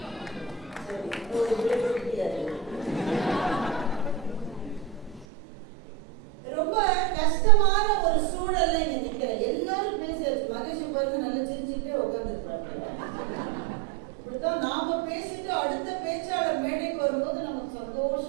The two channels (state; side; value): drops out; left; at 5.2 s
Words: ரொம்ப கஷ்டமான ஒரு சூழல்ல இங்க நிக்கிறேன். எல்லாரும் பேசியாச்சு. மகேஷ் பாருங்க நல்லா சிரிச்சுட்டே உட்கார்ந்துருப்பாங்க. இப்படித்தான் நாம பேசிட்டு அடுத்த பேச்சாளர் மேடைக்கு வரும்போது நமக்கு